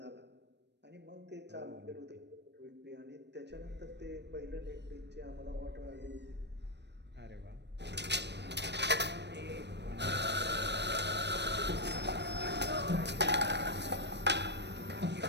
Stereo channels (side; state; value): left; late; 0.50 ms